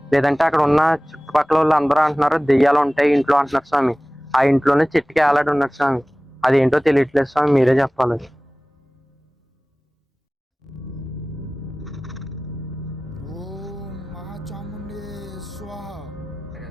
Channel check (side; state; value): both; normal; correlation 0.98